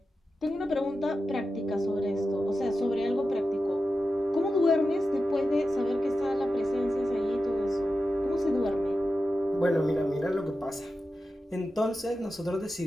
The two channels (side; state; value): both; normal; correlation 0.92